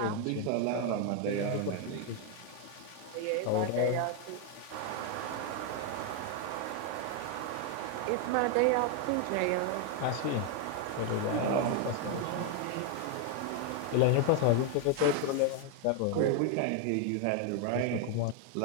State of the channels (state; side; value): different; both; correlation 0.01